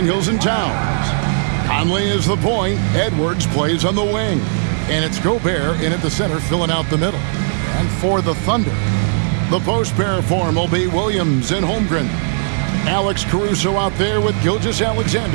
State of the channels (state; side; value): silent; left; digital silence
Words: and Towns. Conley is the point. Edwards plays on the wing. And it's Gobert in at the center, filling out the middle. And for the Thunder, the post pair form will be Williams and Holmgren. Alex Caruso out there with